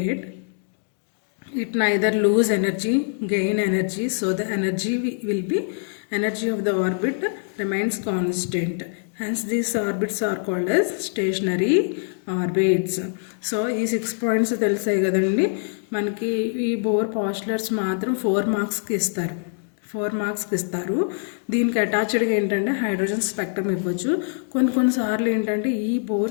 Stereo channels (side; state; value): right; silent; 63 dB below the other